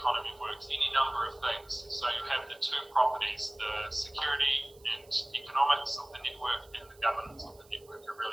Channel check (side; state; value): right; noise; hiss, 27 dB below the sound